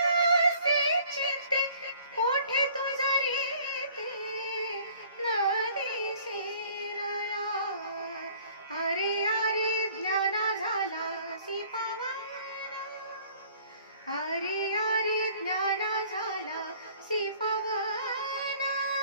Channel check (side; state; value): both; inverted; correlation -0.55